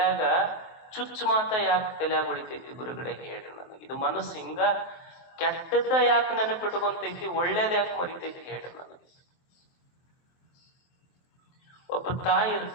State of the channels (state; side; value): late; right; 23 ms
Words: ಚುಚ್ಚು ಮಾತ ಯಾಕೆ ತಲೆಯಾಗ ಉಳಿತೈತಿ ಗುರುಗಳೇ? ಹೇಳ್ರಿ ನನಗೆ. ಇದು ಮನಸ್ಸು ಹಿಂಗ ಕೆಟ್ಟದ್ದ ಯಾಕೆ ನೆನಪಿಟ್ಕೊಂತೈತಿ, ಒಳ್ಳೇದ ಯಾಕೆ ಮರಿತೈತಿ? ಹೇಳ್ರಿ ನನಗೆ. ಒಬ್ಬ ತಾಯಿ